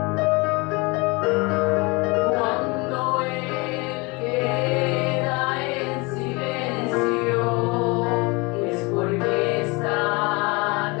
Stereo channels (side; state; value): right; quieter; 27.0 dB